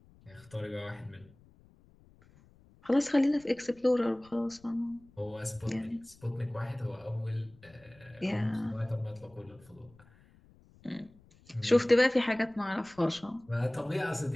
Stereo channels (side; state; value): left; noise; rumble, 27 dB below the sound